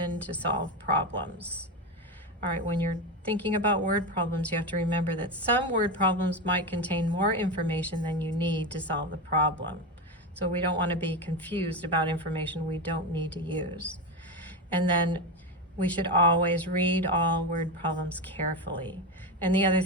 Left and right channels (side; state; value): both; normal; correlation 0.16